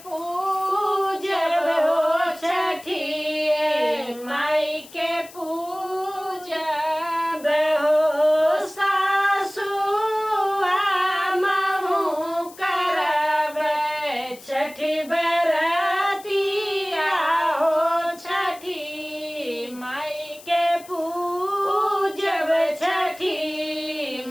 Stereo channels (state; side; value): noise; left; hiss, 20 dB below the sound